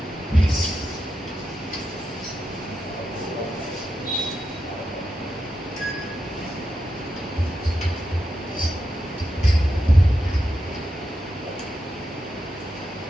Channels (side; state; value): both; normal; correlation 0.87